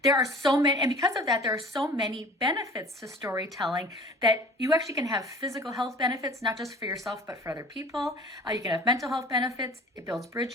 There are so many, and because of that, there are so many benefits to storytelling that you actually can have physical health benefits, not just for yourself, but for other people. You can have mental health benefits. It builds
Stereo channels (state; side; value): normal; both; correlation 0.45